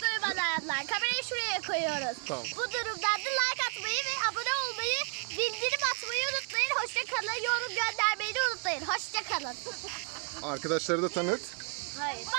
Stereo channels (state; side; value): quieter; left; 40.0 dB